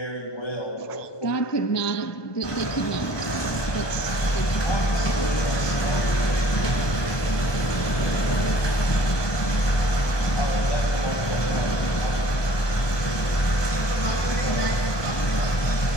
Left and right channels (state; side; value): late; right; 1.2 ms